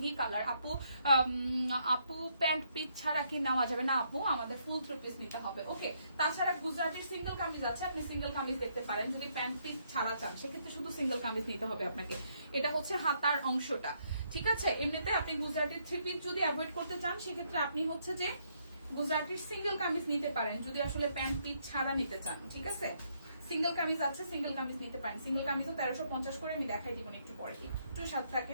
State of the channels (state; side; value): inverted; both; correlation -0.73